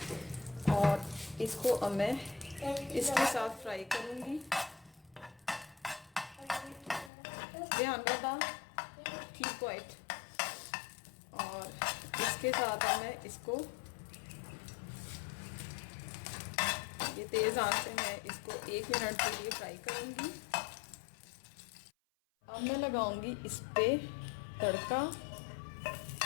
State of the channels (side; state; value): right; drops out; at 7.1 s